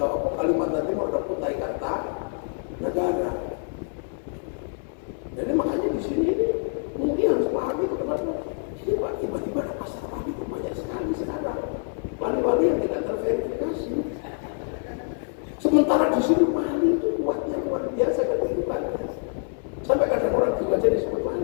Kalimantan Timur ada Kutai Kartanegara. Jadi makanya di sini ini mungkin harus pahami itu kenapa. Ini Pak, tiba-tiba ada pasar wali itu banyak sekali sekarang. Wali-wali yang tidak terverifikasi. Sementara di sini wali itu kuatnya luar biasa kehidupannya. Sampai kadang orang juga jadi disebut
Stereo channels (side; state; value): right; silent; 61 dB below the other